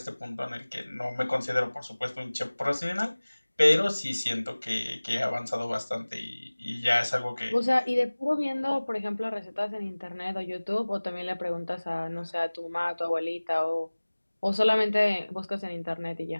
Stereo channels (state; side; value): inverted; both; correlation -1.00